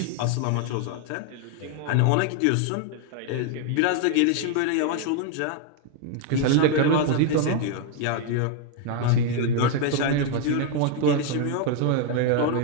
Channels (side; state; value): both; different; correlation 0.00